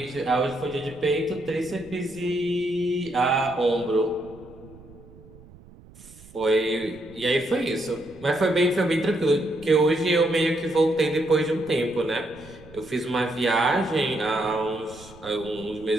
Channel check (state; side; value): noise; right; rumble, 22 dB below the sound